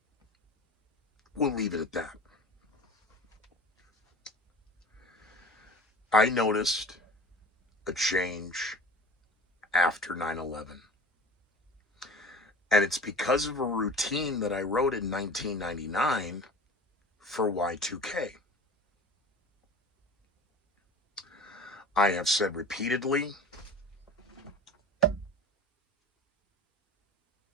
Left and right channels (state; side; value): normal; both; correlation 0.38